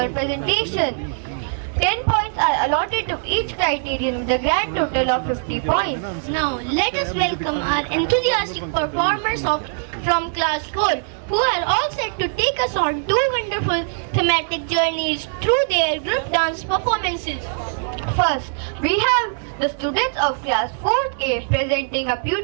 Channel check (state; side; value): silent; left; digital silence